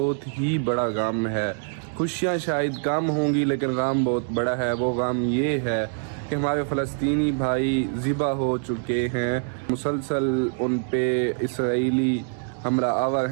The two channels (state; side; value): silent; left; 62 dB below the other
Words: ہی بڑا غم ہے۔ خوشیاں شاید کم ہوں گی لیکن غم بہت بڑا ہے۔ وہ غم یہ ہے کہ ہمارے فلسطینی بھائی ذبح ہو چکے ہیں، مسلسل ان پہ اسرائیلی حملہ آور